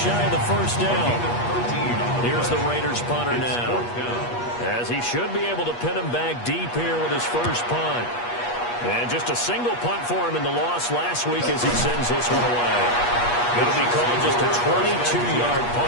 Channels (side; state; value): right; late; 8.4 ms